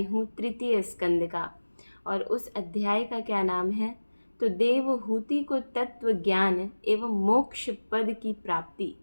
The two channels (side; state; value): both; inverted; correlation -1.00